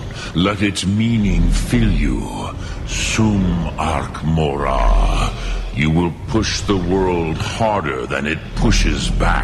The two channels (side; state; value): both; identical; correlation 1.00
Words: Let its meaning fill you. Sum Ark Mora. You will push the world harder than it pushes